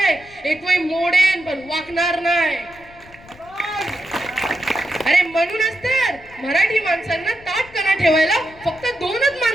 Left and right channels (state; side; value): noise; left; rumble, 24 dB below the sound